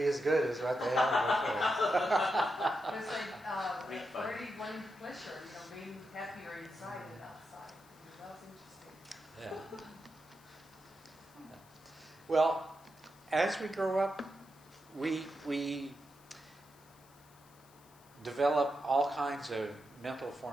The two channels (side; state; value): left; noise; hiss, 27 dB below the sound